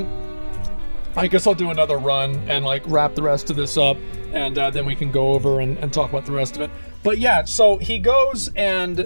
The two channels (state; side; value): inverted; both; correlation -1.00